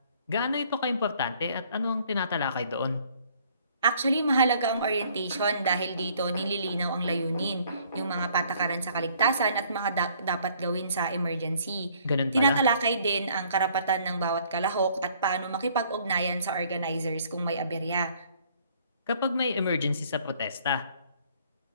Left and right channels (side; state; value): both; inverted; correlation -0.61